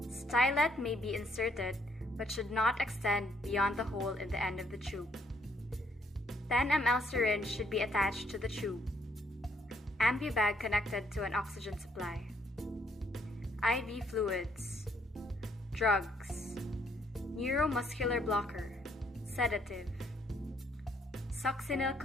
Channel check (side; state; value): both; normal; correlation 0.68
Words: Stylet may be inserted but should not extend beyond the hole in the end of the tube. 10 ml syringe should be attached to the tube. Ambubag connected to an oxygen supply. IV fluids. Drugs. Neuromuscular blocker. Sedative.